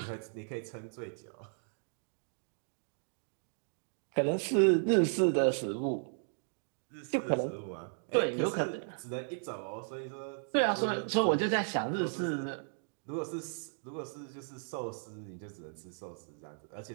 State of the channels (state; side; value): silent; left; digital silence